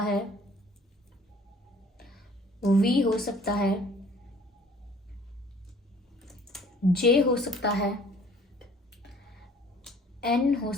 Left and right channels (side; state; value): both; normal; correlation 0.54